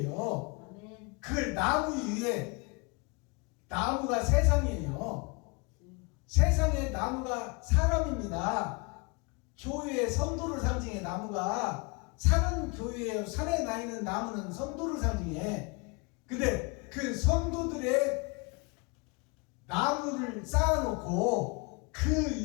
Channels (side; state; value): right; quieter; 29.9 dB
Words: 그걸 나무 위에, 나무가 세상이에요. 세상의 나무가 사람입니다. 교회의 성도를 상징해. 나무가 산은 교회예요. 산에 나 있는 나무는 성도를 상징해. 근데 그 성도들의 나무를 쌓아놓고 그